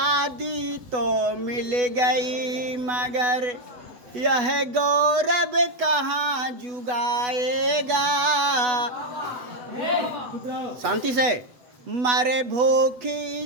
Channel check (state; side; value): late; left; 8.1 ms